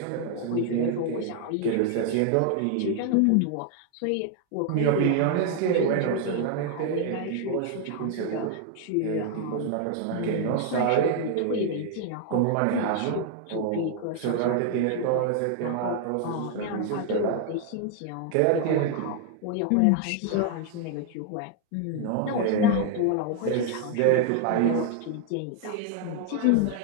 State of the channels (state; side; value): different; both; correlation 0.00